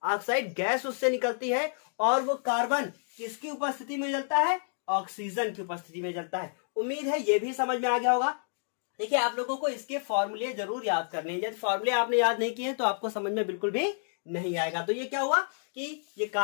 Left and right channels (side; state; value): right; silent; digital silence